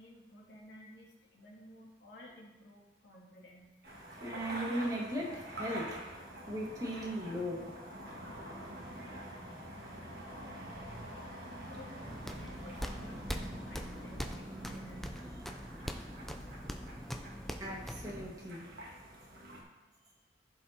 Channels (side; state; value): both; normal; correlation 0.62